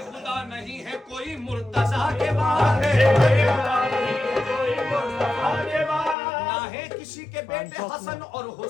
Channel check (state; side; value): drops out; right; at 6.2 s